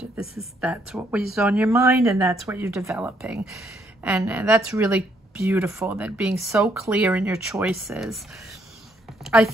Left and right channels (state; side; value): normal; both; correlation 0.71